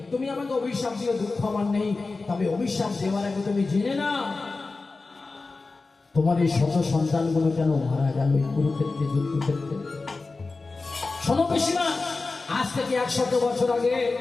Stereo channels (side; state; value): right; quieter; 3.8 dB